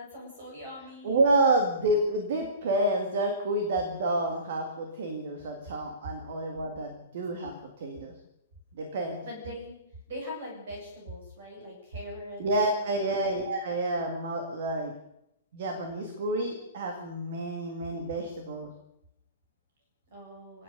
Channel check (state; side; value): inverted; both; correlation -0.40